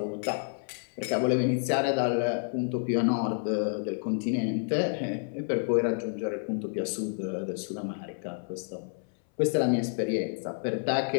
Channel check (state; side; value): silent; right; 58 dB below the other